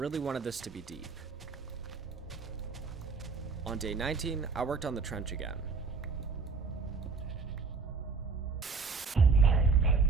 wanted this to be deep. On day 19, I worked on the trench again.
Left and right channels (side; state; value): left; quieter; 4.6 dB